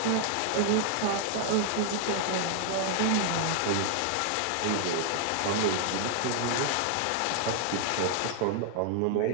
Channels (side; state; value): both; different; correlation 0.00